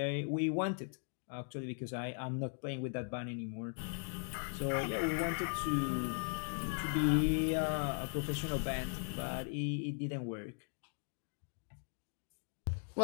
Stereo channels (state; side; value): silent; right; 52 dB below the other